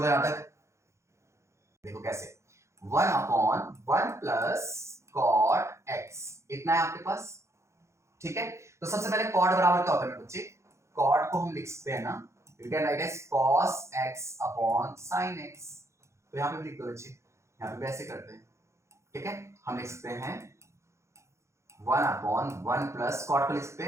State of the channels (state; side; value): late; left; 0.14 ms